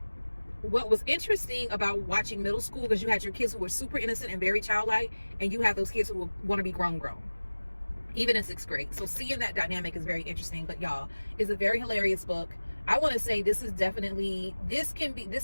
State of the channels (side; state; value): both; inverted; correlation -1.00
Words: what was interesting about watching middle school, because you had your kids who were super innocent and very childlike, and you have those kids who want to be grown, even in 6th grade. So seeing that dynamic is very interesting. But y'all, it's a very hilarious book. I want to say this is a